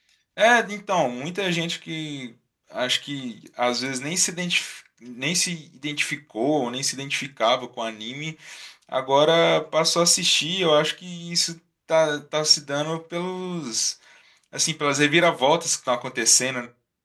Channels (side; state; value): both; identical; correlation 1.00